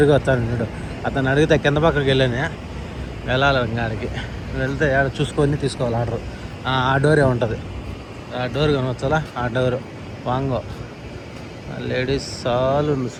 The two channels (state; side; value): identical; both; correlation 1.00